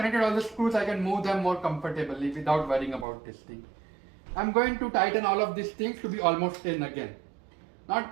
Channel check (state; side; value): drops out; left; at 3.1 s